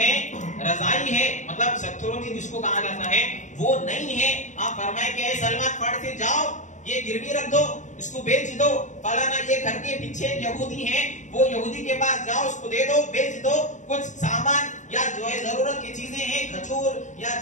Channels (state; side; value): late; right; 0.35 ms